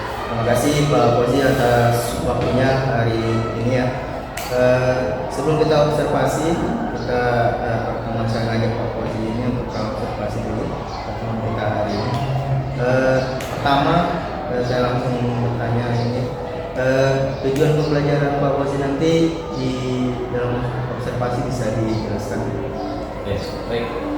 Terima kasih Pak Fauzi atas waktunya hari ini ya. Sebelum kita observasi, kita pertemuan saya ngajak Pak Fauzi ini untuk observasi dulu pertemuan kita hari ini. Pertama, saya langsung bertanya ini, tujuan pembelajaran Pak Fauzi nanti di dalam observasi bisa dijelaskan? Oke, baik.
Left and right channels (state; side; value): identical; both; correlation 1.00